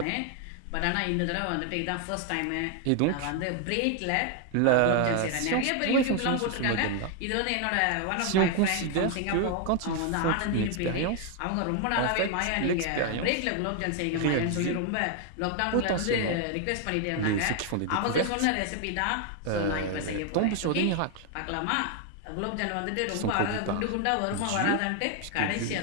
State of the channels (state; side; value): different; both; correlation 0.00